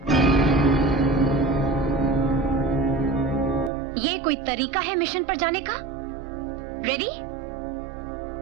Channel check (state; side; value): drops out; left; at 3.7 s